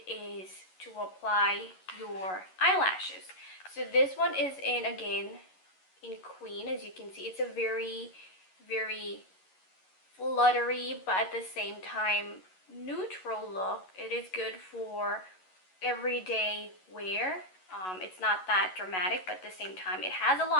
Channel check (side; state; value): right; late; 11 ms